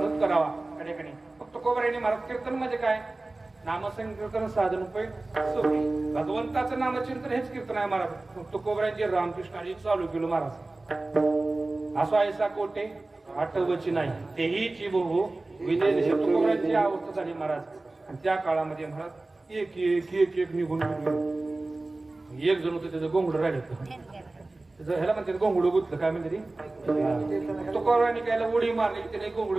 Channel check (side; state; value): left; quieter; 3.0 dB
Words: करावा या ठिकाणी. फक्त कोबऱ्याने महाराज कीर्तन म्हणजे काय? नामसंकीर्तन साधन उपाय सोपे. भगवंताचं नामचिंतन हेच कीर्तन आहे महाराज. फक्त कोबऱ्यांचे रामकृष्णाजी चालू केलं महाराज. असो ऐसा कोटे आठवची नाही तेही चिबो विजय देश कोबऱ्यांची अवस्था झाली महाराज. आणि त्या काळामध्ये महाराज एक एक एक एक निघून एक जण होतं त्याचं गोंगड राहिलं. ह्याला म्हणते गोंगड गुतलं काय म्हणते तो कोबऱ्याने कायला उडी मारली, त्याने गोंगड